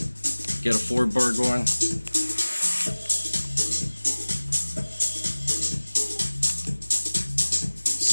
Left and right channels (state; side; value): inverted; both; correlation -1.00